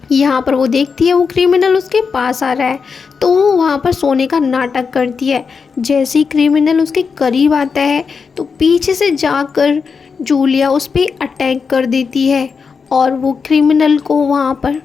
यहाँ पर वो देखती है वो क्रिमिनल उसके पास आ रहा है, तो वो वहाँ पर सोने का नाटक करती है। जैसे ही क्रिमिनल उसके करीब आता है तो पीछे से जाकर जूलिया उस पर अटैक कर देती है और वो क्रिमिनल को वहाँ पर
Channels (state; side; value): quieter; right; 5.5 dB